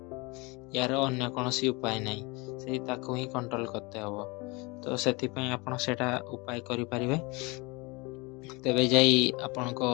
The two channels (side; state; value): right; quieter; 26.7 dB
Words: ୟାର ଅନ୍ୟ କୌଣସି ଉପାୟ ନାହିଁ, ସେଇ ତାକୁ ହିଁ କଣ୍ଟ୍ରୋଲ କରତେ ହେବ। ତ ସେଥିପାଇଁ ଆପଣ ସେଇଟା ଉପାୟ କରିପାରିବେ। ତେବେ ଯାଇ ଆପଣଙ୍କ